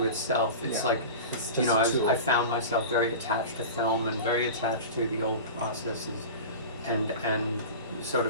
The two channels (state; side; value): inverted; both; correlation -0.31